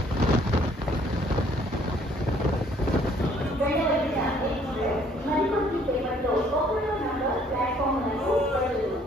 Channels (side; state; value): both; normal; correlation 0.61